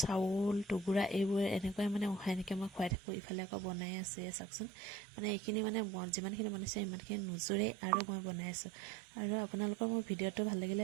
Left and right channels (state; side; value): drops out; left; at 3.0 s